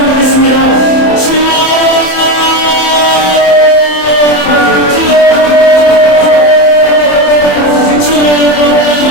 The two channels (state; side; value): late; right; 27 ms